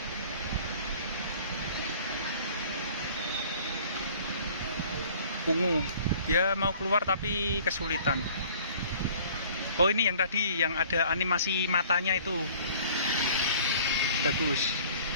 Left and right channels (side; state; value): both; inverted; correlation -0.51